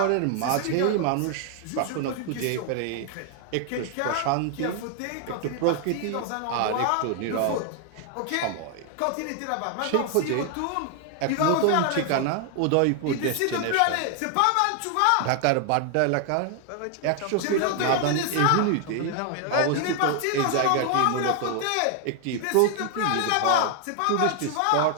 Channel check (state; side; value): different; both; correlation 0.00